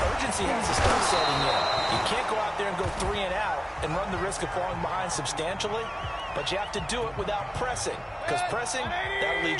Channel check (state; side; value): identical; both; correlation 1.00